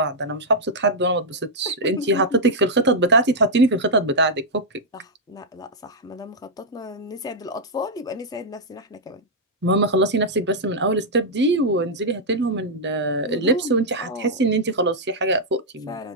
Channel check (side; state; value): both; normal; correlation -0.05